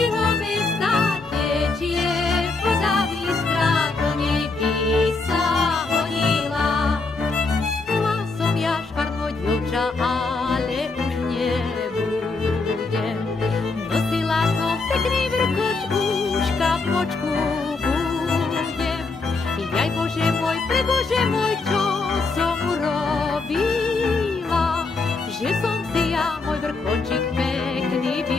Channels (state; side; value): quieter; right; 3.8 dB